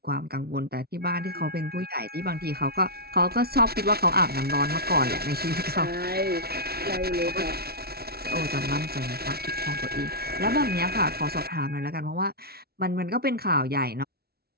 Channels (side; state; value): left; late; 0.45 ms